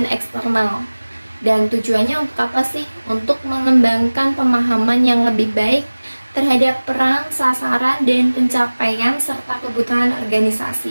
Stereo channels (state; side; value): inverted; both; correlation -1.00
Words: eksternal. Dan tujuannya untuk apa sih? Untuk mengembangkan pemahaman yang lebih baik terhadap peran, sasaran, dan pencapaian serta kebutuhan